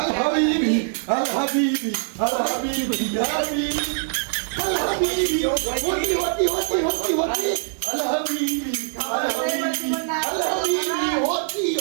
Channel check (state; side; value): silent; left; digital silence